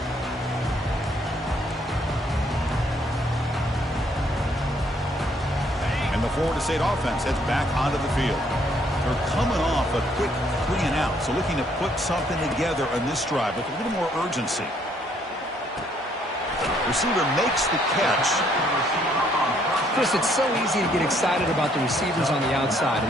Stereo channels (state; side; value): normal; both; correlation 0.67